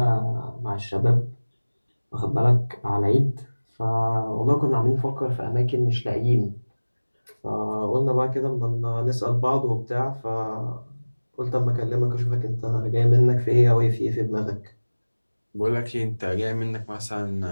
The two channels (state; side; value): inverted; both; correlation -1.00